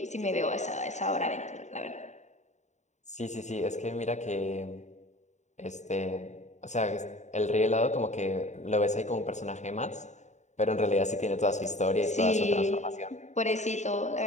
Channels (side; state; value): right; late; 0.34 ms